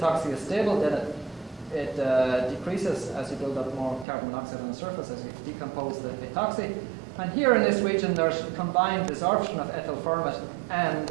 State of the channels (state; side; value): drops out; left; at 4.0 s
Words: is stable, then it decreases as you build up more carbon monoxide on the surface as you decompose the etoxy. And here in this region, there's combined desorption of ethyl format and